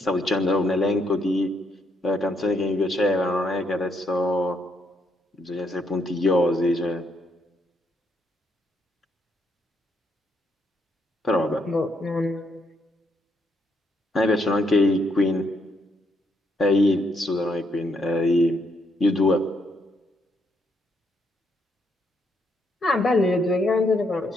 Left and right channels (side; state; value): both; normal; correlation 0.75